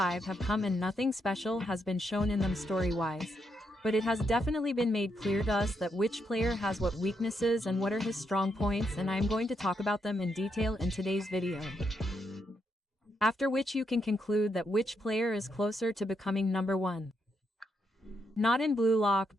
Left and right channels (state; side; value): normal; both; correlation 0.80